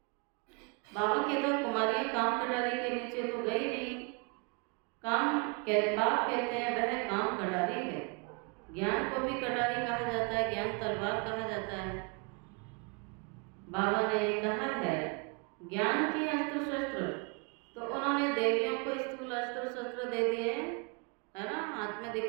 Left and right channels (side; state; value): left; quieter; 32.5 dB